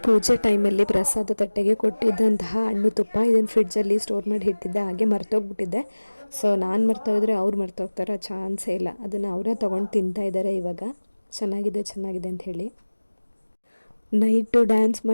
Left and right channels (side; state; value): both; inverted; correlation -1.00